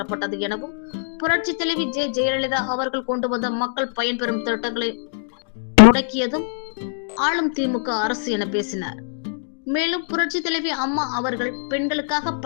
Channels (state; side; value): silent; right; digital silence